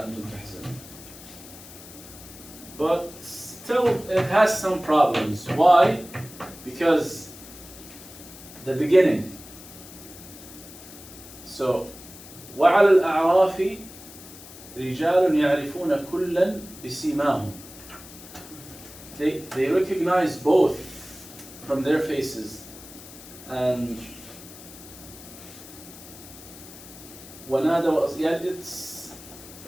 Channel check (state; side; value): noise; left; hiss, 17 dB below the sound